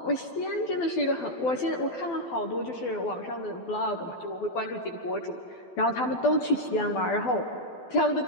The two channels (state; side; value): late; right; 12 ms